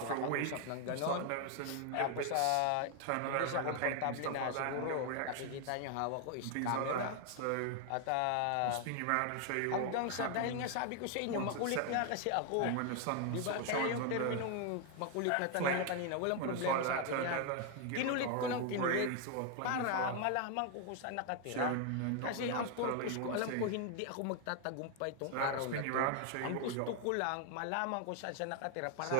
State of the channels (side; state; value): both; different; correlation 0.00